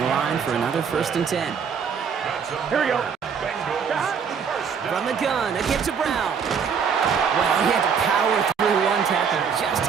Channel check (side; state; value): left; quieter; 6.6 dB